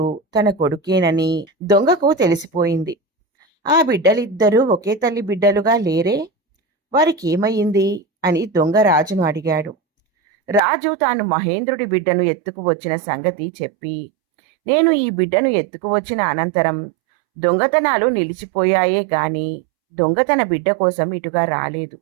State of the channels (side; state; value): left; drops out; at 10.6 s